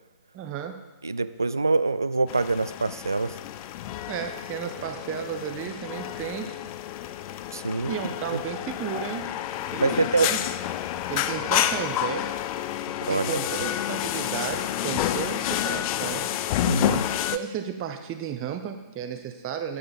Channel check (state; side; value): inverted; both; correlation -0.38